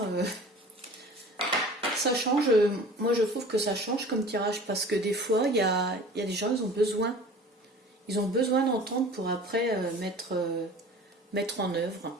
ça change. Moi, je trouve que ça change comme tirage parce que des fois, il y a des gens, ils ont besoin d'entendre pour après mettre en œuvre.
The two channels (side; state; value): both; normal; correlation 0.43